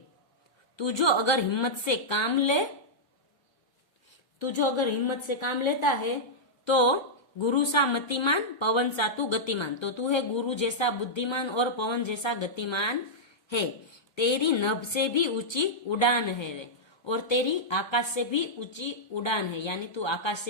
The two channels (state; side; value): late; right; 1.3 ms